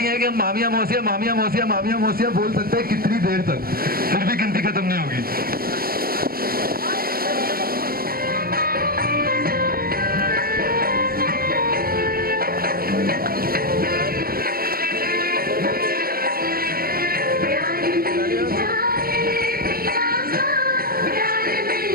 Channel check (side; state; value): left; late; 0.43 ms